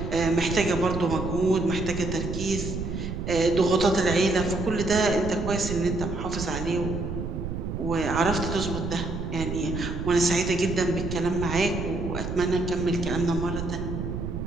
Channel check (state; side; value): noise; right; rumble, 5 dB below the sound